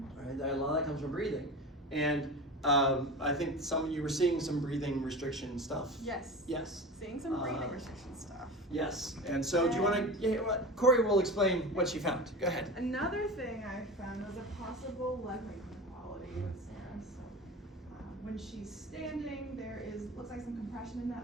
right? A lot of that comes from breathing. And I think some of you were seeing some breathing restriction stuff. Yes. Yes. Seeing some breathing restriction stuff. Yes. And so do you want to, Corey will explain what she found. Go ahead. Another thing I found was a possible leg inequality with Sarah. So when she's standing, looks like some compression in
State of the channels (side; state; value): both; normal; correlation 0.31